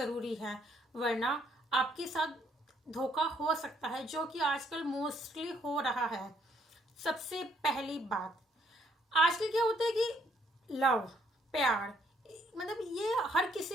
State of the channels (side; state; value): both; normal; correlation 0.69